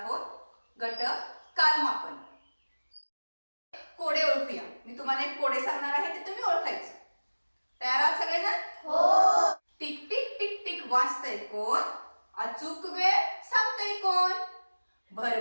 गट कालमापन. कोडे ओळखूया. मी तुम्हाला एक कोडे सांगणार आहे ते तुम्ही ओळखायचे. तयार आहात सगळेजण? हो. टिक टिक टिक टिक वाजतंय कोण? अचूक वेळ सांगतंय कोण?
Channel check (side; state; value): both; inverted; correlation -1.00